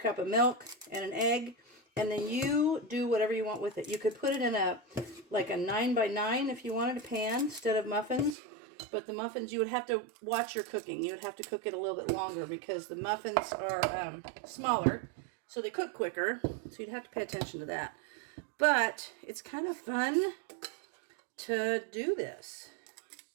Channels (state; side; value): drops out; left; at 8.3 s